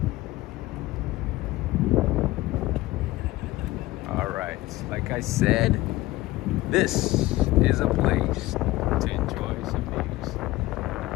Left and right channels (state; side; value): quieter; right; 18.3 dB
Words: Like I said, this is a place to enjoy some views.